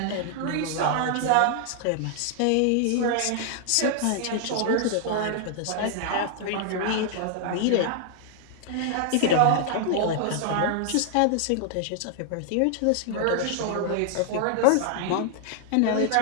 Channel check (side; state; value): both; different; correlation 0.00